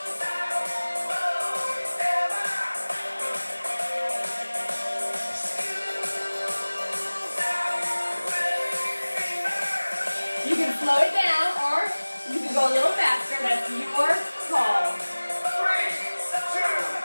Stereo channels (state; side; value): inverted; both; correlation -1.00